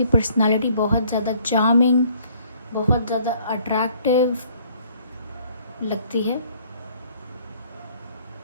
पर्सनालिटी बहुत ज़्यादा चार्मिंग, बहुत ज़्यादा अट्रैक्टिव लगती है।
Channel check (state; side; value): inverted; both; correlation -0.59